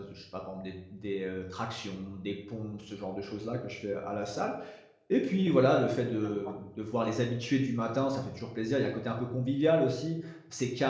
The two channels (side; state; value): both; identical; correlation 1.00